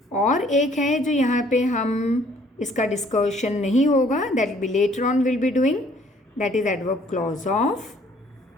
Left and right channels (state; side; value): normal; both; correlation 0.60